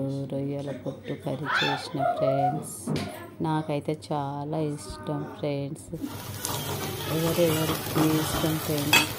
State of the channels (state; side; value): identical; both; correlation 1.00